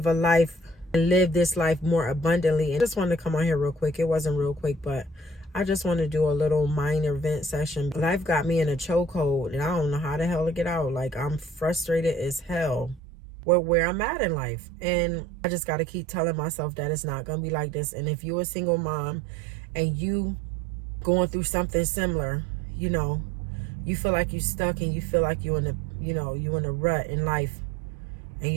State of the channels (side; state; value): left; drops out; at 13.0 s